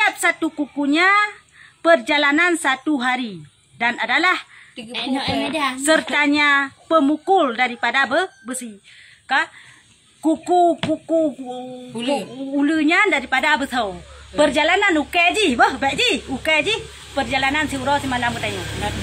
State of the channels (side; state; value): both; identical; correlation 1.00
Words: satu kukunya perjalanan 1 hari dan adalah sertanya pemukul daripada besi. Kuku ulunya daripada besau. Perjalanan ukeji, ukeji perjalanan siuro semalam katanya.